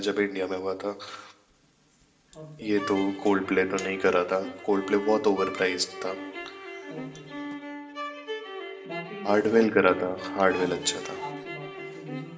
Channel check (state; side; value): identical; both; correlation 1.00